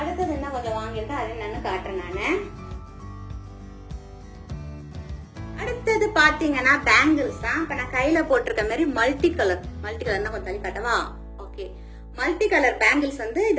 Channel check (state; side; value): identical; both; correlation 1.00